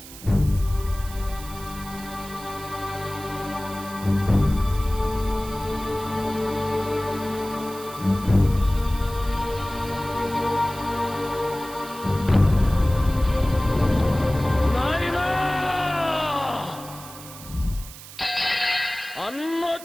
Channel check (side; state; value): right; noise; hiss, 15 dB below the sound